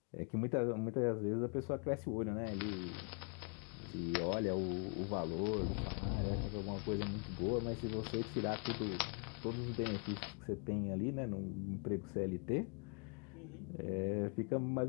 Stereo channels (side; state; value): right; quieter; 40.0 dB